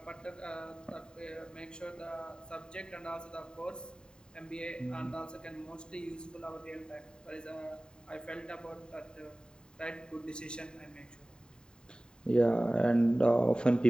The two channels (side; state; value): right; late; 0.048 ms